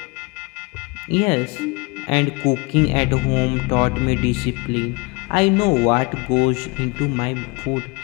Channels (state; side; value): quieter; right; 27.5 dB